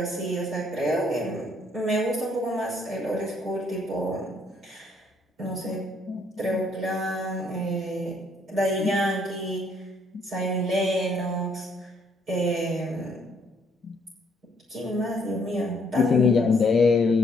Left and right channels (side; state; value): both; normal; correlation 0.67